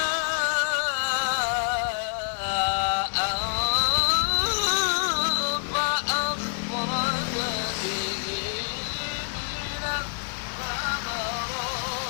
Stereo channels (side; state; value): right; silent; digital silence